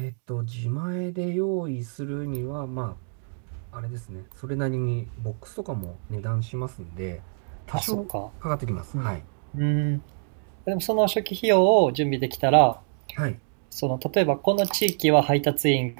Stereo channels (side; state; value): left; silent; 60 dB below the other